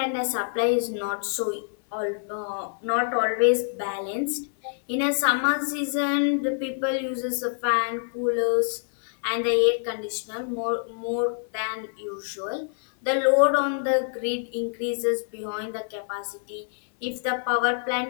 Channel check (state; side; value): silent; right; 61 dB below the other